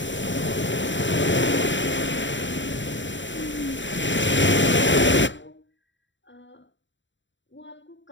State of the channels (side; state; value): right; late; 0.54 ms